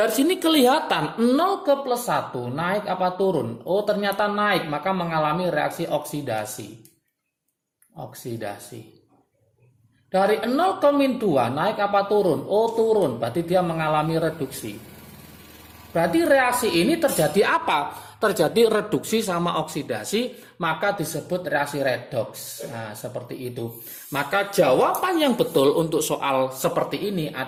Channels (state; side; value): identical; both; correlation 1.00